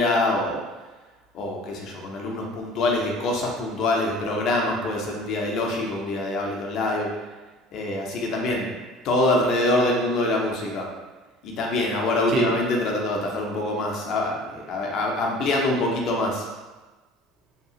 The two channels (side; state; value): both; normal; correlation 0.45